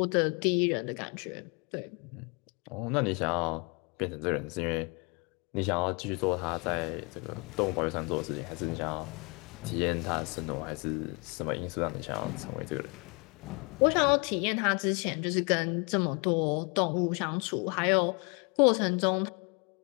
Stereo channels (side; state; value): right; quieter; 31.7 dB